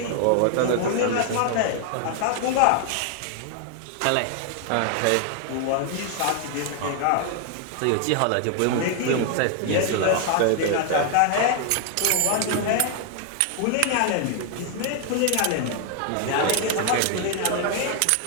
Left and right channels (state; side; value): different; both; correlation 0.00